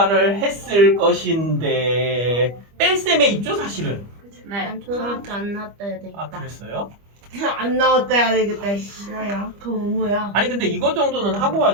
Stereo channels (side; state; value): left; late; 25 ms